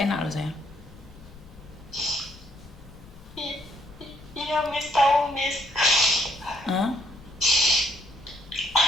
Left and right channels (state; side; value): noise; left; rumble, 21 dB below the sound